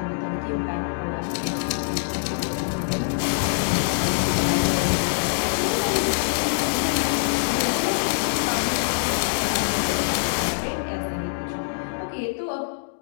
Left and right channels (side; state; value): right; silent; digital silence